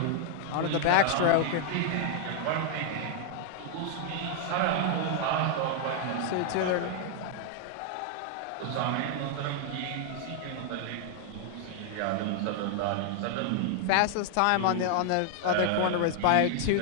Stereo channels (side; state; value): both; different; correlation 0.00